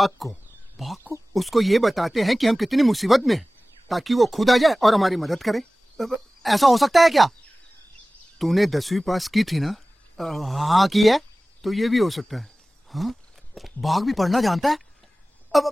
को। बाघ को? उसको ये बताते हैं कि हम कितनी मुसीबत में हैं, ताकि वो खुद आ जाए और हमारी मदद करे। ऐसा हो सकता है क्या? तूने 10वीं पास की थी ना? हाँ की है। तो ये भी हो सकता है। हाँ? बाघ भी पढ़ना जानता है?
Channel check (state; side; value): normal; both; correlation 0.97